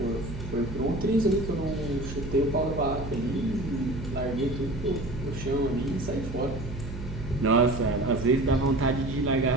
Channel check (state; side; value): noise; right; hum, 9 dB below the sound